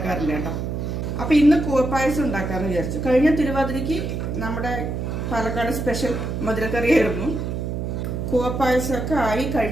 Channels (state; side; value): noise; right; hum, 3 dB below the sound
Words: കേട്ടോ. അപ്പം ഇന്ന് കൂവപ്പായസം ഉണ്ടാക്കാമെന്ന് വിചാരിച്ചു. കഴിഞ്ഞ തിരുവാതിരയ്ക്ക് നമ്മുടെ പാലക്കാട് സ്പെഷ്യൽ മധുരക്കറിയായിരുന്നു. കൂവപ്പായസമൊക്കെ ആയി